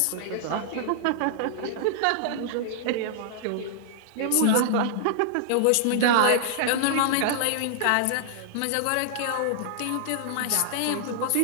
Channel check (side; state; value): both; different; correlation -0.01